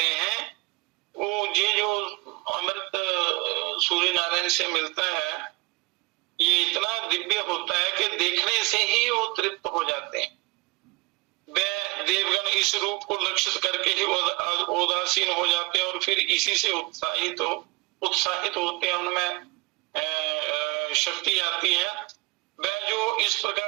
हैं। वो ये जो अमृत सूर्य नारायण से मिलता है, ये इतना दिव्य होता है कि देखने से ही वो तृप्त हो जाते हैं। वे देवगण इस रूप को लक्षित करके ही उदासीन हो जाते हैं, और फिर इसी से उत्साहित होते हैं, उनमें शक्ति आती है। वह जो इस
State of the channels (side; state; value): left; quieter; 26.6 dB